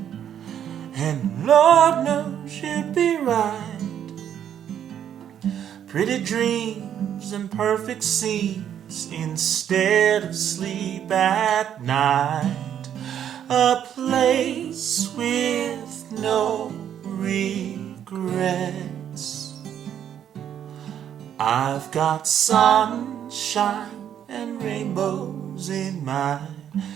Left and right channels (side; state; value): left; quieter; 9.6 dB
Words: and Lord knows you'd be right. Pretty dreams and perfect scenes instead of sleep at night. A place with no regrets. I've got sunshine and rainbows in my